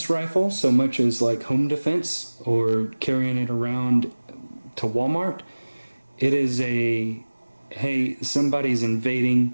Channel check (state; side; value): inverted; both; correlation -1.00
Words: rifle so much as like home defense or carrying it around to Walmart. It is a, hey, somebody's